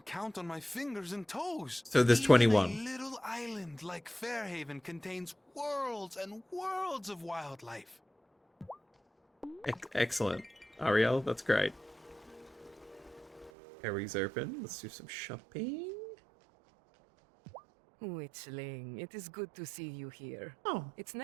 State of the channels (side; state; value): left; drops out; at 13.5 s